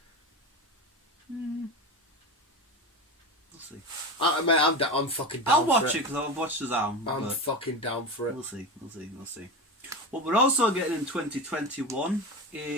We'll see. I'm fucking down. I'll watch it because I'll watch Shazam. I'm fucking down for it. We'll see. What we're also getting in 2021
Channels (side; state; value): both; normal; correlation 0.24